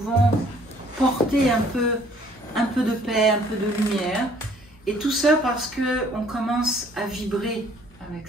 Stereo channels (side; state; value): both; normal; correlation 0.59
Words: porter un peu de paix, un peu de lumière. Et tout ça parce qu'on commence à vibrer avec